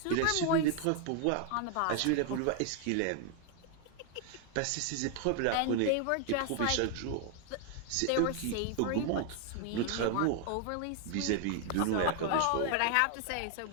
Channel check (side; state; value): both; different; correlation 0.00